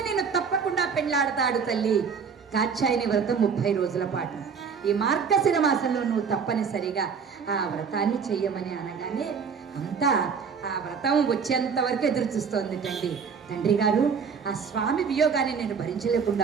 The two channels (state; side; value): quieter; left; 6.1 dB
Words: నేను తప్పకుండా పెళ్ళాడతాడు తల్లి. కాత్యాయని వ్రతం 30 రోజుల పాటు. ఈ మార్గశిర మాసంలో నువ్వు తప్పనిసరిగా ఆ వ్రతాన్ని చెయ్యమని అనగానే అంతా ఆ వ్రతం వచ్చేంత వరకు ఎదురు చూస్తోంది తండ్రి గారు, ఆ స్వామి వియోగాన్ని నేను